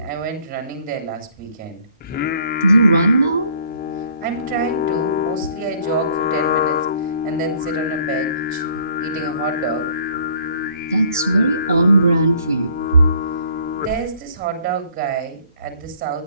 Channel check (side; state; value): both; inverted; correlation -0.57